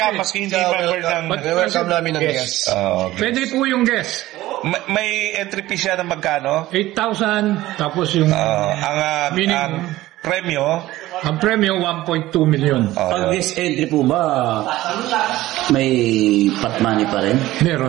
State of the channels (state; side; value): quieter; left; 16.4 dB